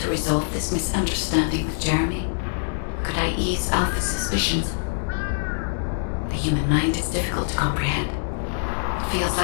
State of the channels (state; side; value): silent; right; digital silence